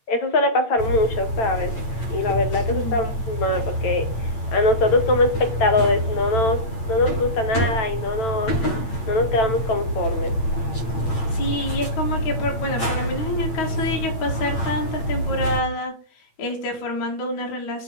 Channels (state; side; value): late; right; 8.7 ms